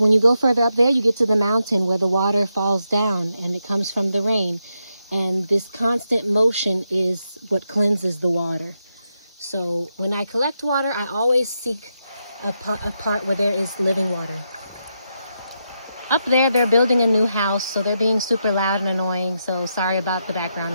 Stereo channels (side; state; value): both; inverted; correlation -0.84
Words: you go further up there, you get to the mountain where the water falls down and it comes from the rain. And this constant motion is what cleanses the water. So when I collect water, I always seek a part where there is living water. Up there, they're building a new house, so they're being super loud and annoying, so sorry about the background